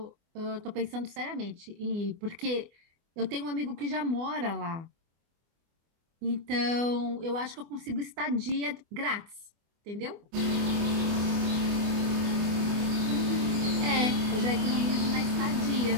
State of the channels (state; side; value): late; left; 24 ms